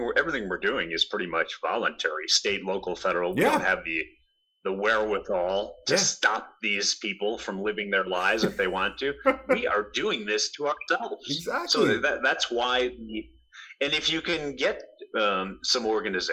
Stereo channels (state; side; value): identical; both; correlation 1.00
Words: we're doing is pretty much voluntary. State, local, federal, we don't have the the wherewithal to stop these people from living their lives if they want to. We are doing this to ourselves. Exactly. So that's why. And if you can get some